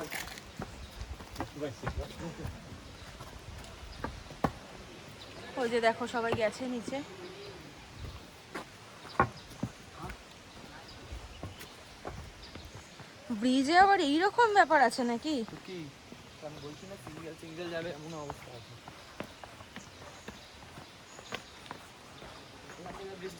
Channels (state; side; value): identical; both; correlation 1.00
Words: ওই যে দেখো সবাই গেছে নিচে। ব্রিজে আবার এইরকম ব্যাপার আছে নাকি?